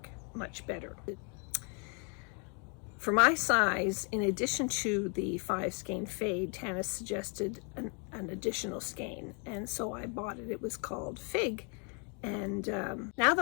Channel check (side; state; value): right; quieter; 36.8 dB